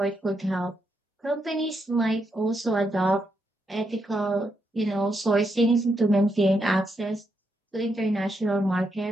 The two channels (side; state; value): both; normal; correlation 0.81